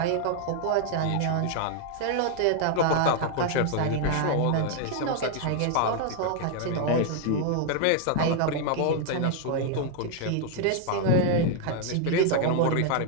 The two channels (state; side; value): different; both; correlation 0.00